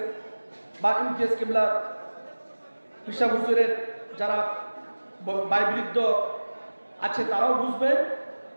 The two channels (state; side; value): inverted; both; correlation -1.00